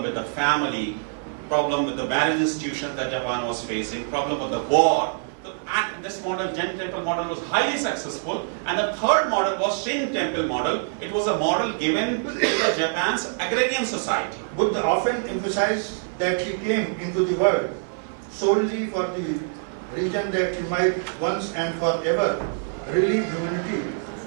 with the family, problem with the marriage institution that Japan was facing, problem with the war. And this model, Zen temple model, was highly successful. And the third model was Shin temple model. It was a model given to the Japan's agrarian society. Buddha often emphasized that he came into the world solely for the reason that he might once and forever relieve humanity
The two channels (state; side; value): silent; left; 62 dB below the other